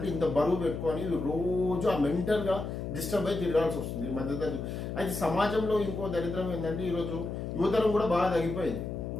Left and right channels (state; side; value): noise; left; hum, 5 dB below the sound